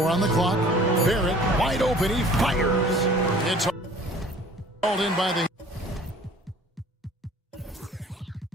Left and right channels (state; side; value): normal; both; correlation 0.50